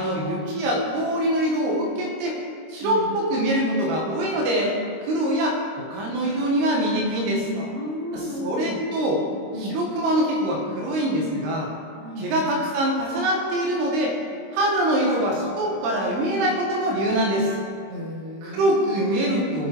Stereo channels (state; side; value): late; left; 26 ms